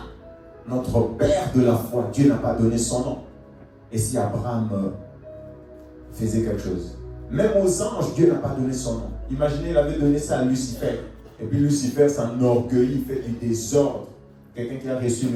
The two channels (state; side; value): identical; both; correlation 1.00